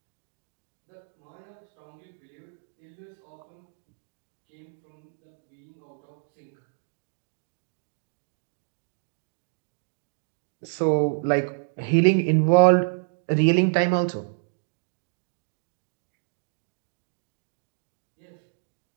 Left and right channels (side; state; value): left; silent; digital silence